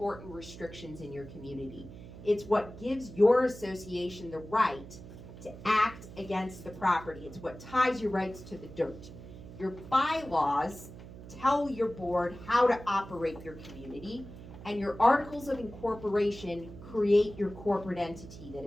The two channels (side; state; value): right; noise; hum, 15 dB below the sound